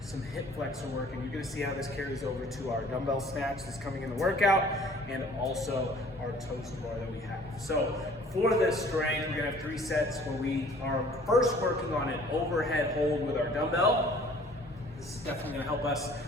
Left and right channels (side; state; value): both; normal; correlation 0.53